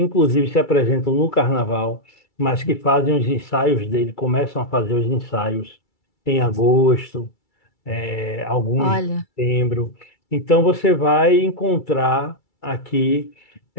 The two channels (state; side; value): late; right; 2.3 ms